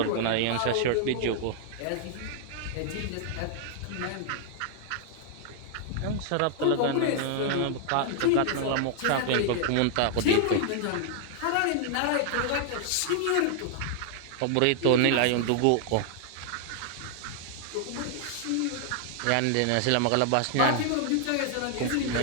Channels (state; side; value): different; both; correlation 0.00